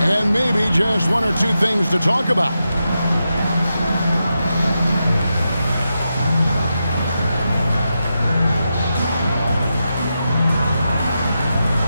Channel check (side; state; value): both; inverted; correlation -0.88